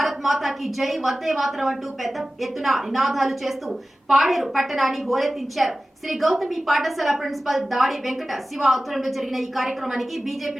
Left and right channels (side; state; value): both; normal; correlation 0.96